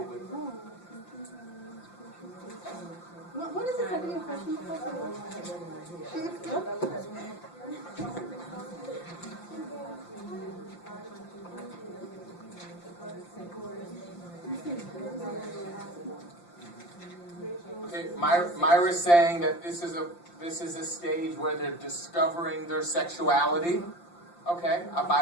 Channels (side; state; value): right; late; 5.8 ms